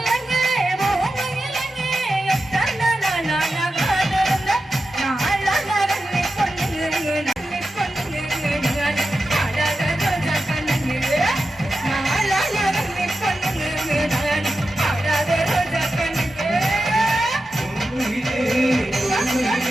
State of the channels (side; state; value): both; normal; correlation 0.91